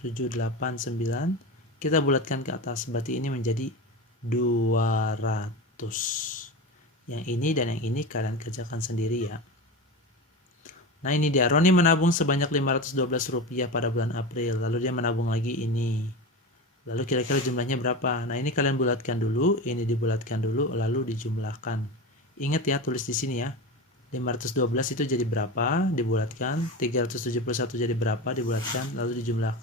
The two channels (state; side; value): normal; both; correlation 0.25